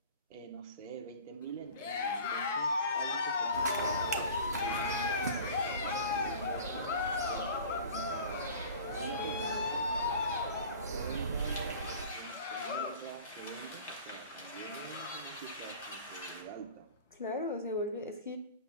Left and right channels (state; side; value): inverted; both; correlation -0.42